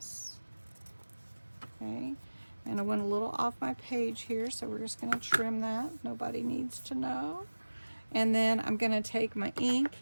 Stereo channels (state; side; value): inverted; both; correlation -1.00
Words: Okay, and I went a little off my page here, so we're just going to trim that. Nobody needs to know. And then I'm going to take my ink,